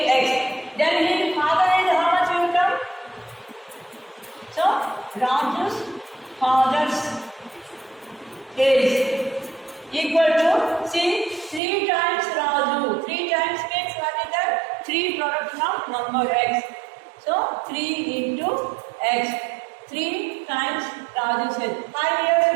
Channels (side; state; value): left; drops out; at 11.6 s